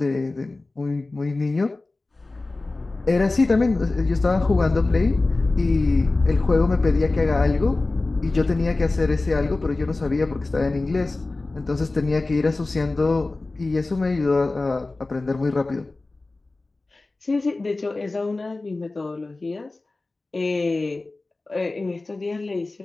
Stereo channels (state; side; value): quieter; right; 3.2 dB